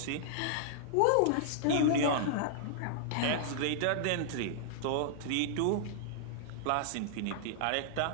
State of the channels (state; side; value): different; both; correlation -0.01